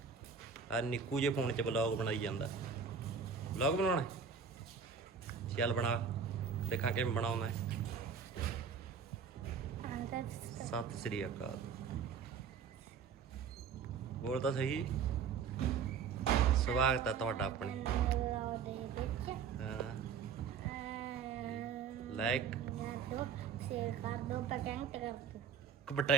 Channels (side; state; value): left; quieter; 6.4 dB